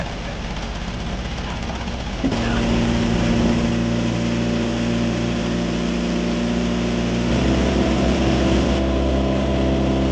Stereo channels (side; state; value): both; identical; correlation 1.00